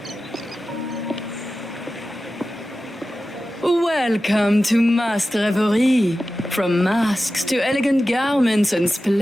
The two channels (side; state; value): both; normal; correlation 0.94